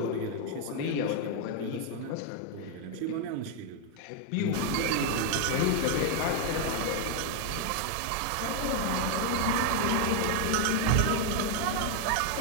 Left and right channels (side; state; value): both; different; correlation 0.00